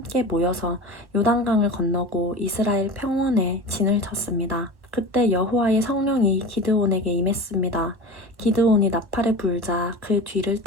모여서 요단강을 건너고 이스라엘 평원에 진을 쳤습니다. 그때 여호와의 성령이 기드온에게 임했습니다. 기드온이 나팔을 불자 그 뒤를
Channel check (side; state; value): left; late; 1.3 ms